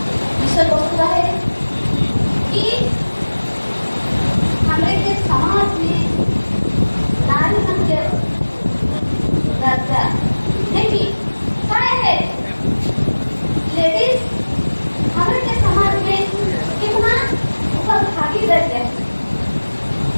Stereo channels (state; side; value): inverted; both; correlation -1.00